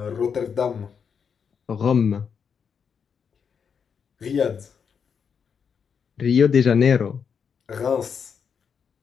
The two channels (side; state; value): right; quieter; 6.7 dB